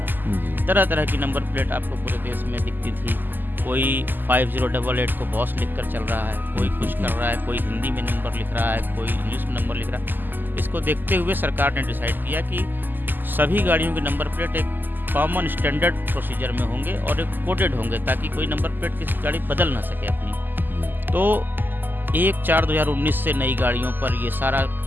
तरह तरह की नंबर प्लेट आपको पूरे देश में दिखती थी। कोई 5088 को बॉस लिख कर चल रहा है, कोई कुछ कर रहा है, कोई हिंदी में नंबर लिख रहा है, कोई इंग्लिश में नंबर लिख रहा है। इसको देखते हुए सरकार ने डिसाइड किया कि सभी गाड़ियों के नंबर प्लेट एक कॉमन स्टैंडर्ड प्रोसीजर में होंगे और एक कोडेड होंगे ताकि कोई नंबर प्लेट किसी गाड़ी बदल ना सके अपनी। तो 1/4/2019 से नई गाड़ियों पर ये सारा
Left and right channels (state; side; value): late; left; 0.089 ms